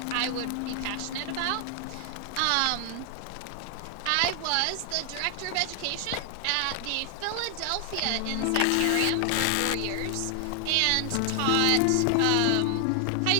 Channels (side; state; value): both; different; correlation 0.00